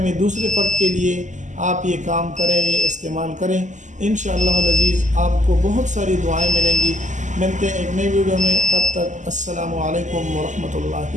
میں دوسرے فرد کے لیے آپ یہ کام کریں، یہ استعمال کریں، انشاءاللہ العزیز آپ کو بہت ساری دعائیں ملیں گی۔ ملتے ہیں ایک نئی ویڈیو میں، تب تک السلام علیکم ورحمۃ اللہ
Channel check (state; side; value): late; left; 0.35 ms